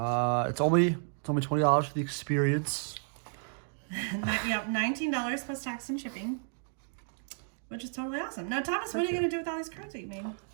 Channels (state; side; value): silent; left; 56 dB below the other